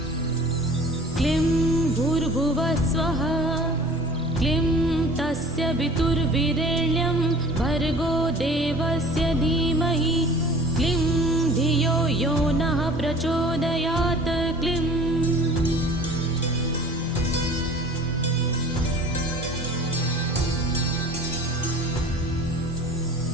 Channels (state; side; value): normal; both; correlation 0.45